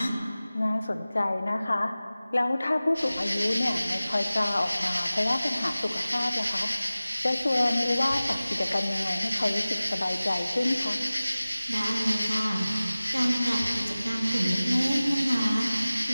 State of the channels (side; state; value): both; inverted; correlation -0.98